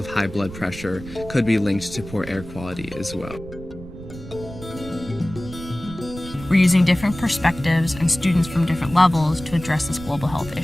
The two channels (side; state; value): right; noise; rumble, 14 dB below the sound